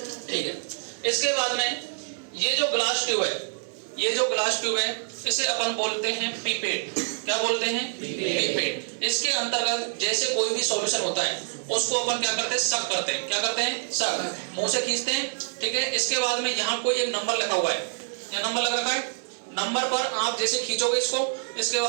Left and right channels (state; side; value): silent; left; 61 dB below the other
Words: ठीक है। इसके बाद में ये जो ग्लास ट्यूब है, ये जो ग्लास ट्यूब है इसे अपन बोलते हैं पिपेट। क्या बोलते हैं? पिपेट। इसके अंतर्गत जैसे कोई भी सॉल्यूशन होता है उसको अपन क्या करते हैं? सक करते हैं। क्या करते हैं? सक। मुंह से खींचते हैं, ठीक है। इसके बाद में यहाँ कोई एक नंबर लिखा हुआ है, क्या नंबर लग रखा है? नंबर पर आप जैसे खींचोगे इसको, इसके